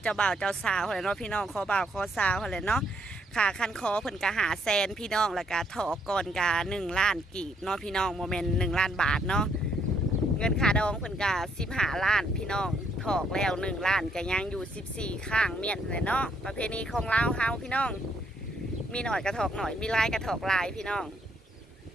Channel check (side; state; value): both; normal; correlation 0.71